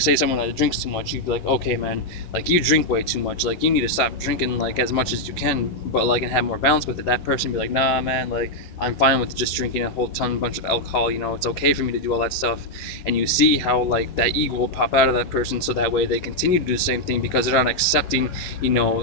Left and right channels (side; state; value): right; late; 11 ms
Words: someone that drinks too much, you'd be like, okay, man, like, you drink way too much, like, you need to stop drinking like as much as you can, but like, and have more balance with it. That person be like, nah, man, like, I'm fine with just drinking a whole bunch of alcohol, it's okay for me to do all that stuff. And you see how like that ego will pop out of that person, so that way they continue to do the same thing, because they're not accepting